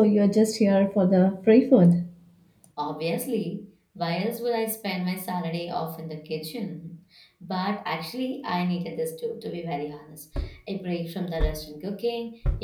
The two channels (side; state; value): both; identical; correlation 1.00